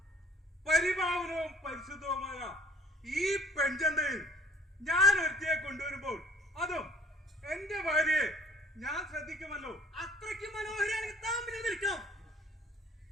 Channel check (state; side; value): normal; both; correlation 0.53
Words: പരിഭാവനവും പരിശുദ്ധവുമായ ഈ പെൺചന്തയിൽ ഞാൻ ഒരുത്തിയെ കൊണ്ടുവരുമ്പോൾ അതും എന്റെ ഭാര്യയെ ഞാൻ ശ്രദ്ധിക്കുമല്ലോ. അത്രയ്ക്ക് മനോഹരിയാണെങ്കിൽ താമ്പിൽ നിൽക്കാം.